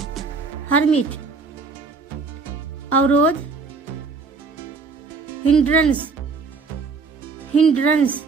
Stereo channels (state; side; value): quieter; left; 4.6 dB